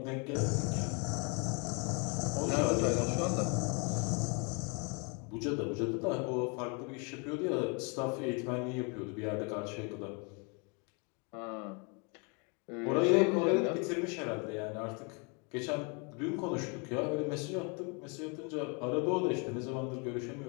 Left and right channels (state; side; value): quieter; right; 33.8 dB